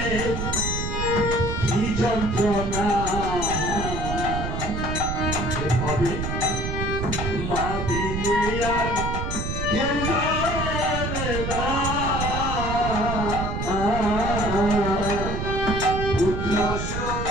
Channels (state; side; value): noise; right; rumble, 3 dB below the sound